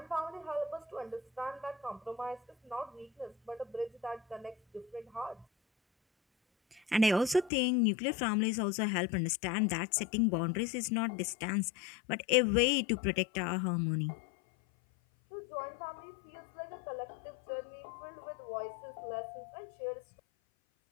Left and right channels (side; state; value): right; drops out; at 7.5 s